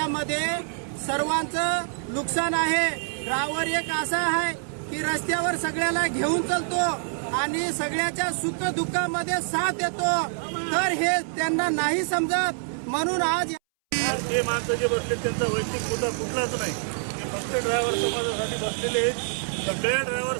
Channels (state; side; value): silent; left; 61 dB below the other